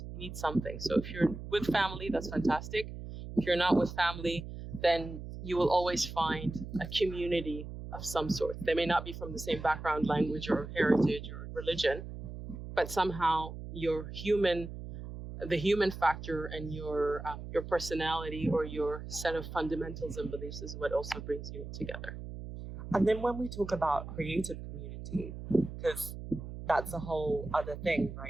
You need something. So if you're with family, that's fantastic. If you're not with family, then you will always find a community of some sort. They may not be from the same background, language, or heritage, or religion, but somehow the human factor and your personality or your set of fundamentals and beliefs is what also brings you together. And then when we talk about creative community, because that's a whole other thing,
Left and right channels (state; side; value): noise; right; hum, 10 dB below the sound